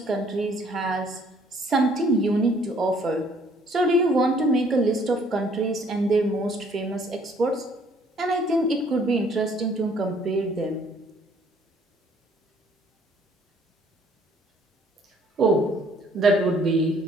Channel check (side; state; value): both; normal; correlation 0.61